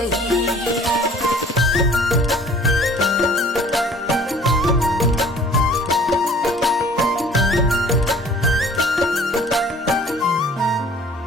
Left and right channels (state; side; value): normal; both; correlation 0.51